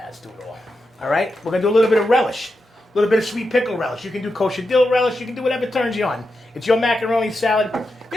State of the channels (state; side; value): normal; both; correlation 0.88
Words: do it all right? We're going to do a little bit of relish. A little bit of sweet pickle relish. You can do kosher dill relish. You can do whatever turns you on. It's your macaroni salad.